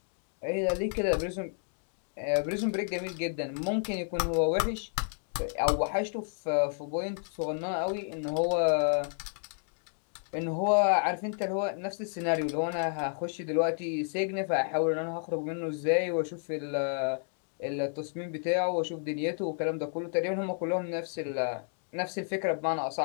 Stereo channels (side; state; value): right; silent; 57 dB below the other